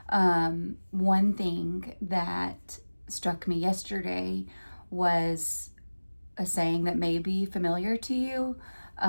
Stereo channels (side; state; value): both; inverted; correlation -1.00